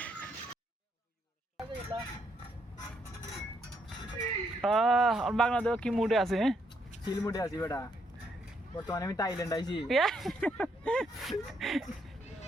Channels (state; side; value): normal; both; correlation 0.74